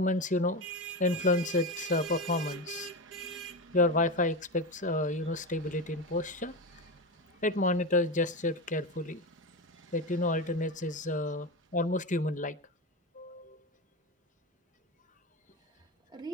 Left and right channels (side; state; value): both; normal; correlation 0.19